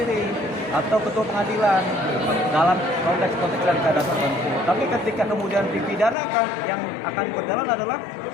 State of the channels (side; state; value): right; drops out; at 6.2 s